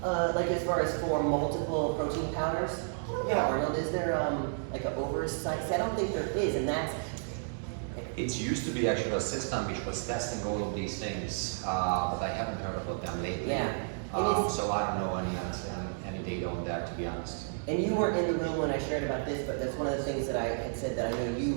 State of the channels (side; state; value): left; silent; digital silence